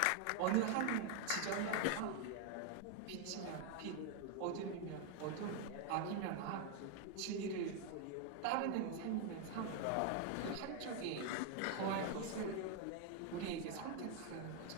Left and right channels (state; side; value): different; both; correlation 0.00